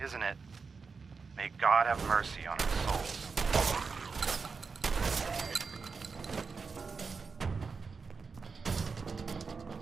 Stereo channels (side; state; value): left; quieter; 4.9 dB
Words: it? May God have mercy on our souls.